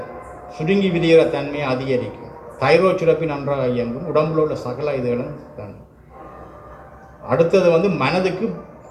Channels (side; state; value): both; identical; correlation 1.00